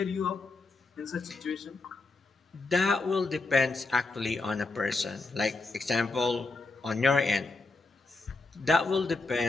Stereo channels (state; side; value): quieter; right; 3.6 dB